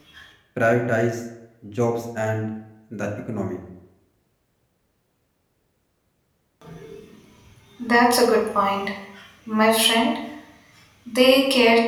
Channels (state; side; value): identical; both; correlation 1.00